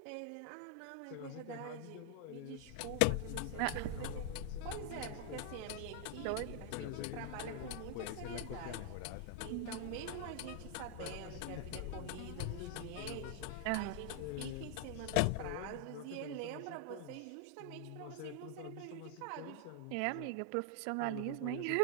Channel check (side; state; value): both; different; correlation 0.00